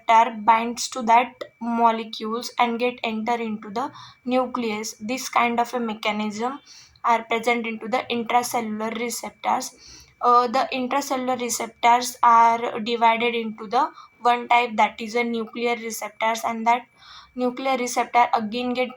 binds to that molecules and get enter into the nucleus. This kind of a mechanism are present into the intracellular receptors. The intracellular receptors are divided into the one type, that is a nuclear receptors, and that nuclear receptor again get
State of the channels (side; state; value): both; identical; correlation 1.00